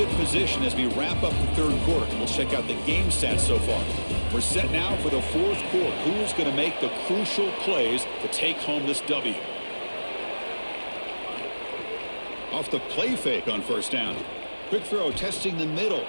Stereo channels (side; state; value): both; inverted; correlation -1.00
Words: position as we wrap up the 3rd quarter. We'll check out the game stats so far. We're set now for the 4th quarter. Who's going to make the crucial plays to take home this W? Off the play fake on 1st down. Quick throw testing the middle.